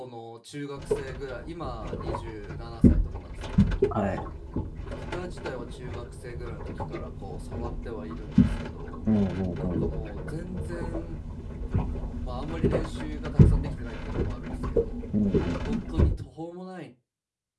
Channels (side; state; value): both; identical; correlation 1.00